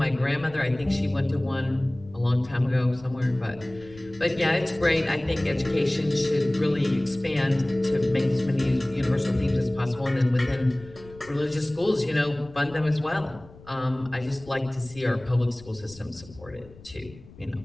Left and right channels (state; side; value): noise; left; rumble, 21 dB below the sound